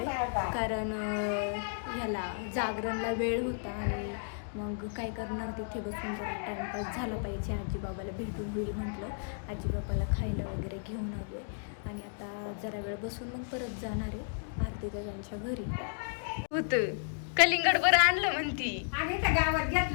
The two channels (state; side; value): silent; right; digital silence